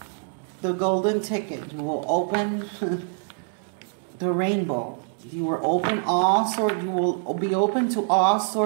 the golden ticket. You will open the rainbow. You will open all sorts. You will be open to all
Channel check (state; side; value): silent; left; 62 dB below the other